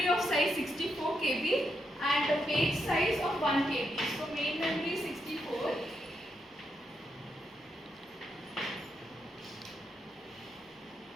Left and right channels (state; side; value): normal; both; correlation 0.81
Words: of size 64 KB and a page size of 1 KB. So main memory 64.